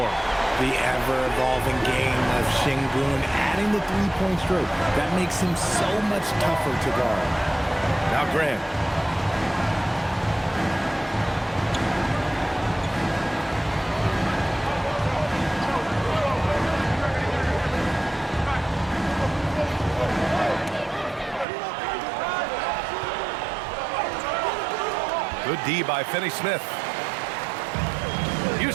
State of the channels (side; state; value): left; drops out; at 21.5 s